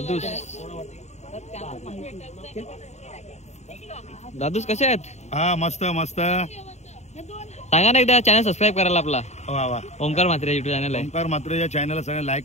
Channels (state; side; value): late; right; 0.32 ms